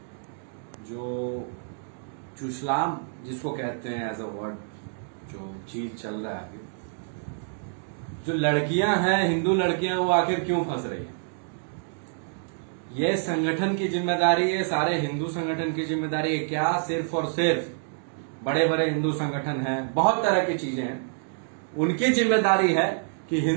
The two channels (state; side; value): silent; left; digital silence